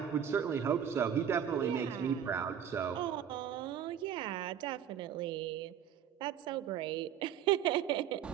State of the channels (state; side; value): quieter; left; 9.1 dB